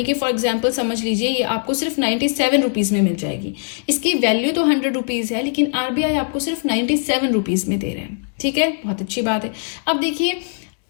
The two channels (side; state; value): right; silent; 65 dB below the other